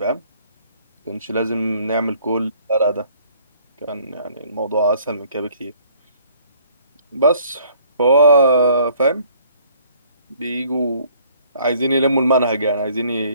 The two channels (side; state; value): both; inverted; correlation -0.59